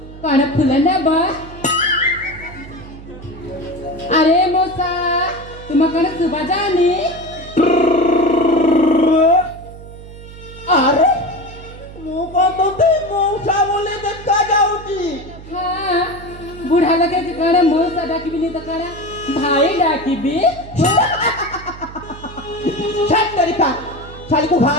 कोण फुलं ना बा अरे मौसा तुम्हाला सुबा जाणी अरे ମୁଁ କଣ ତତେ ମଉସା ବୋଲି ଦେଖା ଯାଉଛି हाँ बुढ़ा लगे कि कण मौसा डाकिबी नहीं तो कण भाई डाकिबी ଛାଡ ତରିକା ଶାଳୀକୁ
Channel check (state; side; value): noise; right; hum, 16 dB below the sound